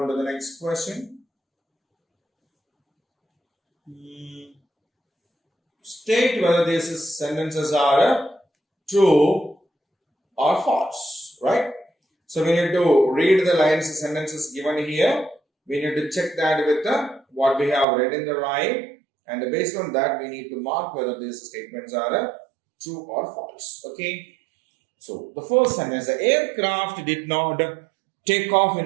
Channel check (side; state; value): left; drops out; at 17.9 s